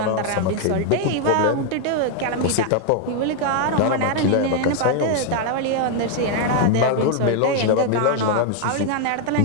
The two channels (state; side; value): different; both; correlation 0.00